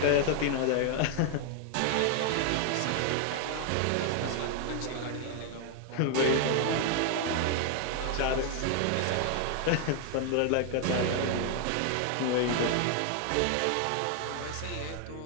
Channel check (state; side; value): different; both; correlation 0.00